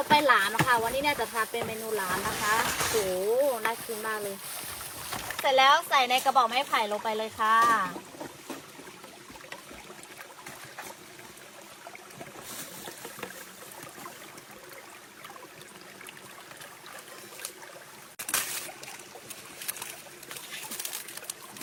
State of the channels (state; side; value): identical; both; correlation 1.00